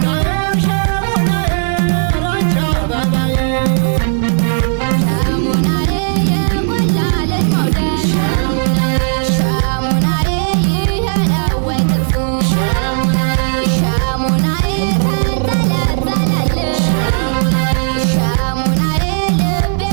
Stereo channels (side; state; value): left; silent; digital silence